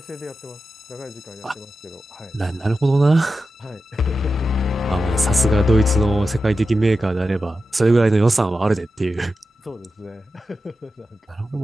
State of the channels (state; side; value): normal; both; correlation 0.91